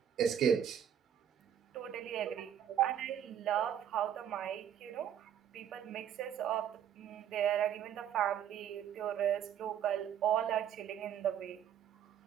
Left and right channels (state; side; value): quieter; left; 9.5 dB